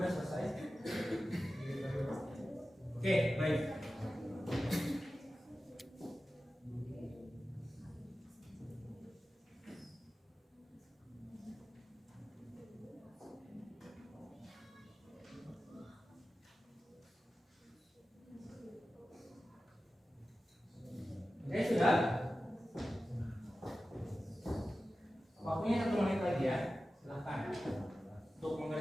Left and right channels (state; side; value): normal; both; correlation 0.94